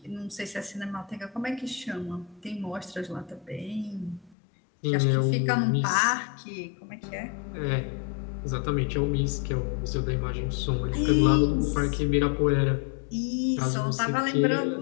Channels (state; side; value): drops out; right; at 4.4 s